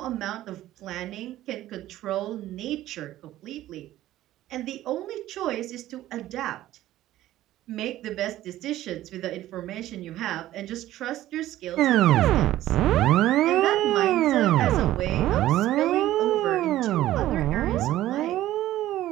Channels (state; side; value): quieter; left; 14.4 dB